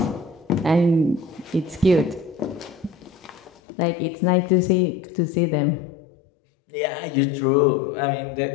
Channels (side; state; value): right; drops out; at 3.5 s